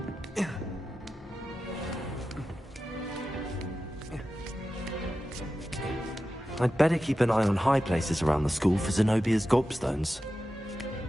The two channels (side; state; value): both; normal; correlation 0.92